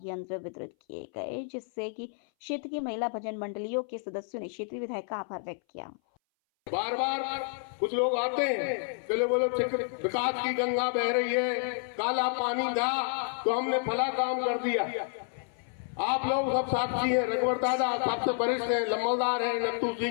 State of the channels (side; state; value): right; silent; 58 dB below the other